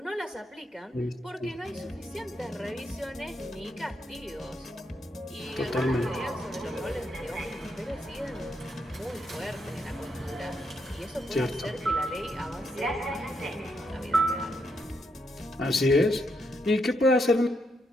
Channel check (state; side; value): normal; both; correlation 0.79